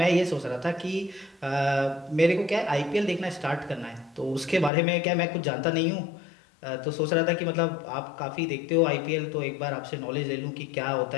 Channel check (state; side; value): drops out; right; at 4.7 s